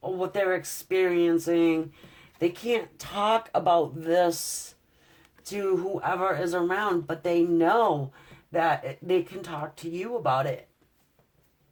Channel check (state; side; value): identical; both; correlation 1.00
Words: or what they're experiencing. They can't talk about this to whoever is around, but they know that they can talk to you about it.